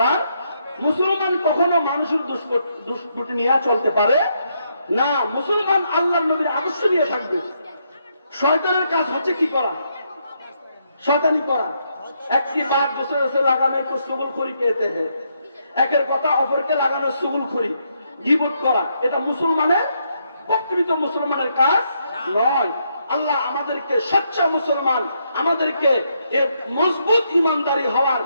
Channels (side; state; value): both; inverted; correlation -0.77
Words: মুসলমান কখনো মানুষের দুষ্কৃতি নিয়ে চলতে পারে না। মুসলমান আল্লাহর নবীর আদর্শ নিয়ে থাকবে। শয়তানের কাজ হচ্ছে কি করা? শয়তানি করা। একটি বাদ দূসরে লাগানো তো সুগুলখুরি कहते हैं। একের কথা অপরকে লাগানো সুগুলখুরি, গীবত করা। এটা মুসলমানের, প্রকৃত মুসলমানের কাজ নয়। আল্লাহ আমাদেরকে সচ্চা মুসলমান, আমাদেরকে এ মজবুত ইমানদারি হওয়ার